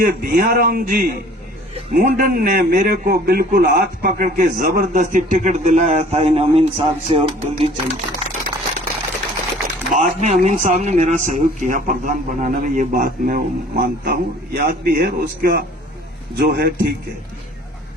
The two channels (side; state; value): both; normal; correlation 0.51